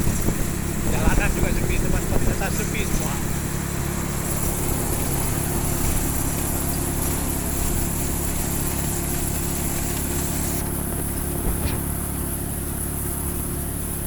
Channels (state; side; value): identical; both; correlation 1.00